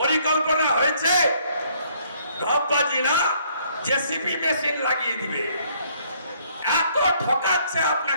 হয়েছে, ঢপবাজি না, জেসিপি মেশিন লাগিয়ে দিবে। এত ঠকাচ্ছে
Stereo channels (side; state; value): both; inverted; correlation -0.65